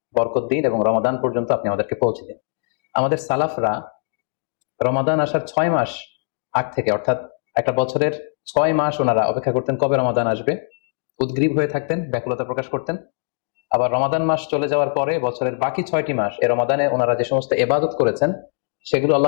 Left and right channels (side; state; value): right; silent; 65 dB below the other